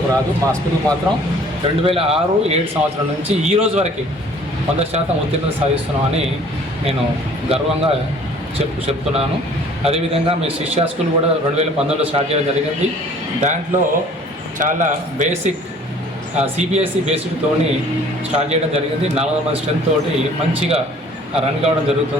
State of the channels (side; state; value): both; normal; correlation 0.53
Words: రాదు. మా స్కూల్కి మాత్రం 2006-7 సంవత్సరం నుంచి ఈ రోజు వరకు 100% ఉత్తీర్ణత సాధిస్తున్నామని నేను గర్వంగా చెప్తున్నాను. అదేవిధంగా మీ శిష్యా స్కూల్ కూడా 2019లో స్టార్ట్ చేయడం జరిగింది. దాంట్లో చాలా బేసిక్ సిబిఎస్ఈ బేసిక్తోని స్టార్ట్ చేయడం జరిగింది. 400 మంది స్ట్రెంత్ తోటి మంచిగా రన్ కావడం